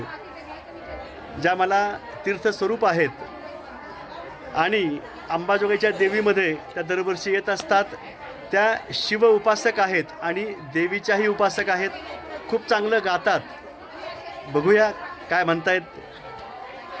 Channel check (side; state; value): both; identical; correlation 1.00